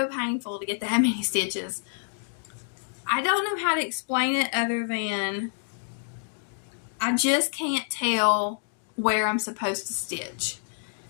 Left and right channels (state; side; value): silent; right; digital silence